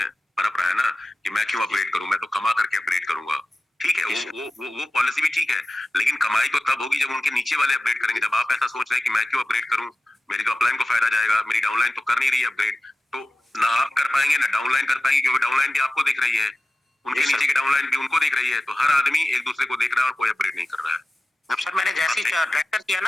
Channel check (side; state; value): both; normal; correlation 0.94